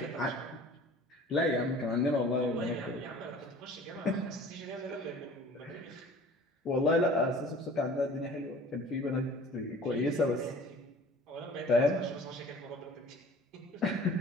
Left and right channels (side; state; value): both; normal; correlation 0.46